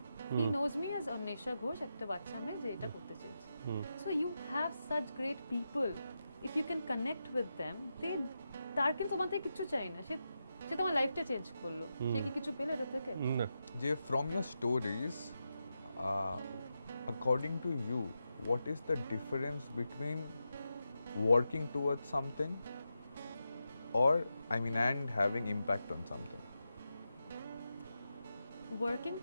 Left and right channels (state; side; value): inverted; both; correlation -0.88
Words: He knows me as Anwesha Ghosh, একটা বাচ্চা মেয়ে যে এটা করতে চেয়েছে। So you have such great people, if you can connect with them, তার কিন্তু তোমার থেকে কিছু চাই না, সে তোমার লাইফটা চেঞ্জ করলো, সে কি কিছু পেলো এটা থেকে? যে from your stories, according to you, what is the difference between working towards something and having impact on something? Working